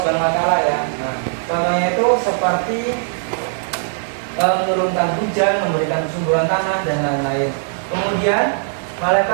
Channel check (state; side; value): silent; left; digital silence